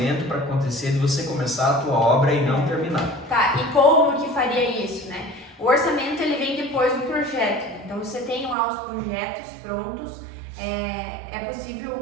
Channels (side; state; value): left; drops out; at 8.6 s